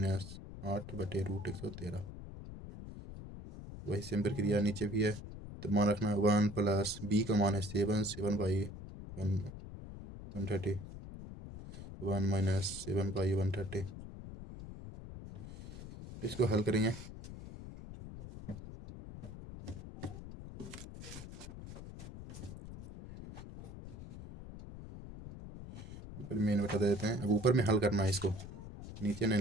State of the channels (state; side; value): noise; left; rumble, 12 dB below the sound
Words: 8 बटे √113। वही सेम प्रक्रिया नीचे भी है। तो मान रखना है 1 प्लस बी का मान है 7/130, 1 माइनस 7/130। इसको हल करेंगे। मेन बता देते हैं। अब ऊपर में हल करना है इसको, नीचे